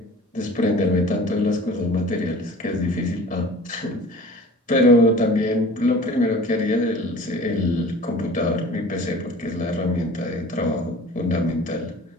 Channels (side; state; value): both; normal; correlation 0.43